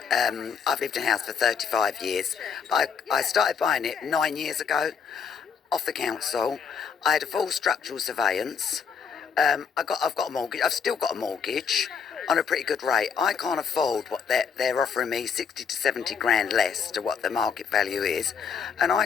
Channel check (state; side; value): quieter; right; 6.6 dB